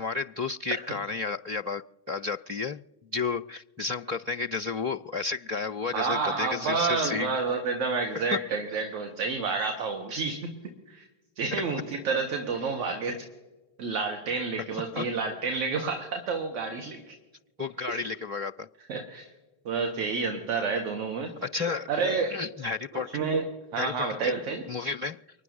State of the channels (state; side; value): late; left; 3.6 ms